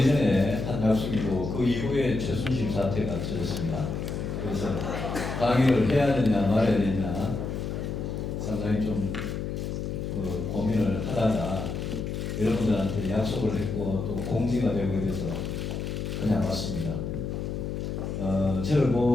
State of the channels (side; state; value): left; noise; hum, 4 dB below the sound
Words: 한 약속이고 그 이후에 최순실 사태가 터졌습니다. 그래서 강의를 해야 되냐 말아야 되냐 상당히 좀 고민을 하다가 여러분들한테 약속을 했고 또 공지가 되고 이래서 그냥 왔습니다. 저를